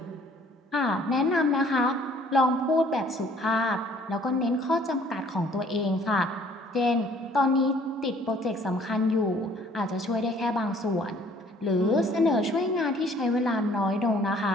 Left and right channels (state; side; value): normal; both; correlation 0.58